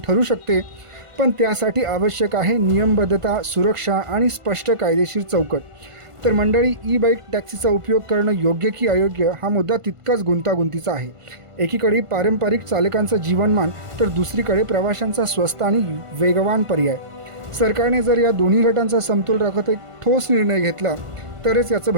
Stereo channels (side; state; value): left; late; 1.5 ms